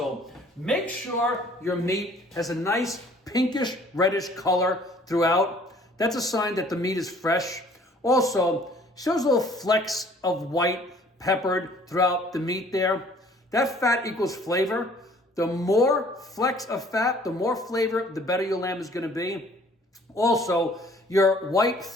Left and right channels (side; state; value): both; normal; correlation 0.56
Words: make sure your meat has a nice pinkish reddish color throughout. That's a sign that the meat is fresh. Also, shows little flecks of white peppered throughout the meat there. That fat equals flavor. The more flecks of fat, the more flavor, the better your lamb is going to be. Also, your white